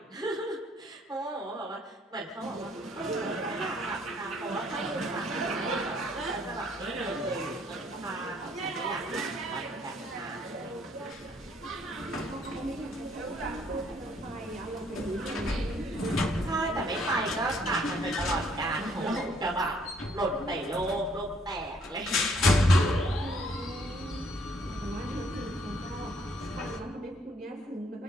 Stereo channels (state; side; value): normal; both; correlation 0.65